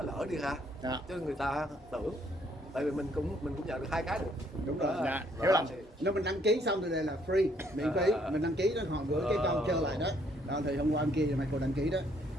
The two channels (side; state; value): both; normal; correlation 0.67